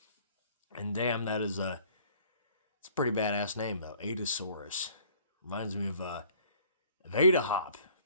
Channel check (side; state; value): both; inverted; correlation -0.55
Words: And damn, it's a pretty badass name though. Adasaurus. Reminds me of Ada Hop,